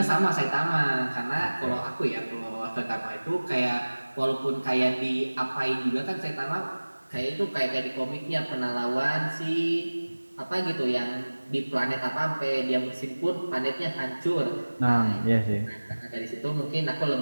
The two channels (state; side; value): inverted; both; correlation -1.00